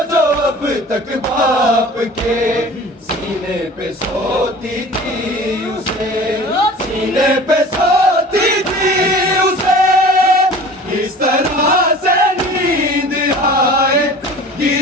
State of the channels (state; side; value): normal; both; correlation 0.42